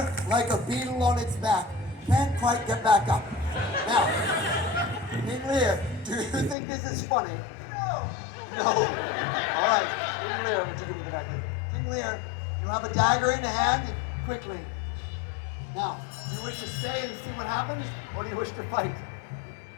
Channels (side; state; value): right; drops out; at 6.6 s